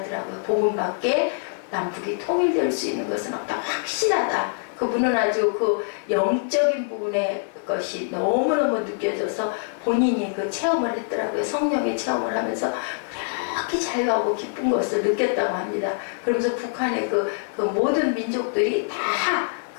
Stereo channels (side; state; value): right; silent; digital silence